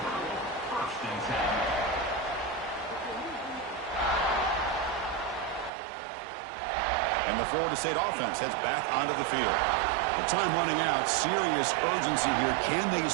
And the Florida State offense heads back onto the field. The time running out. Serious urgency here. Can they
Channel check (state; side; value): drops out; left; at 5.7 s